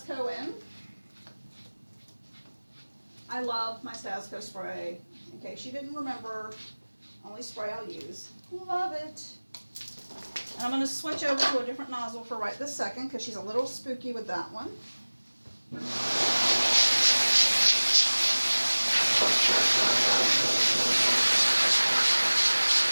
in. I love my Stasco spray. In case you didn't remember, only spray I'll use. Love it. And I'm going to switch over to a different nozzle for right this second because she's a little spooky with that one.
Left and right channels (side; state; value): both; inverted; correlation -1.00